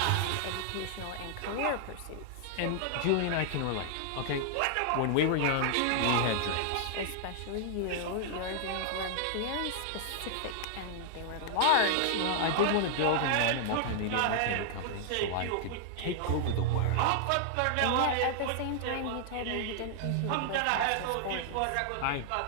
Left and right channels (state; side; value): different; both; correlation 0.00